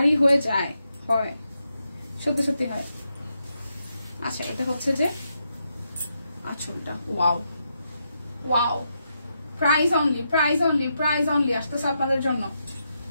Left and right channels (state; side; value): inverted; both; correlation -0.83